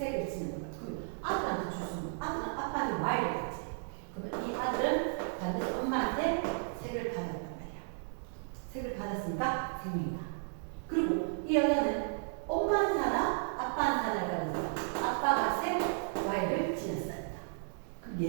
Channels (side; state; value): left; silent; digital silence